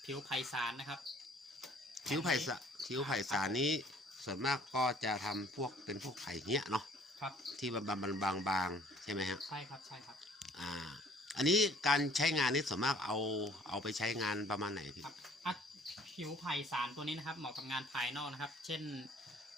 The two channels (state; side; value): normal; both; correlation 0.56